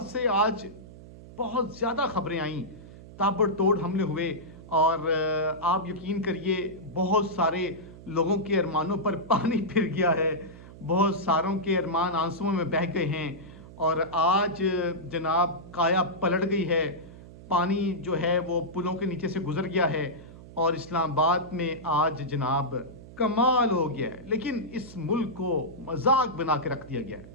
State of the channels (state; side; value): noise; right; hum, 17 dB below the sound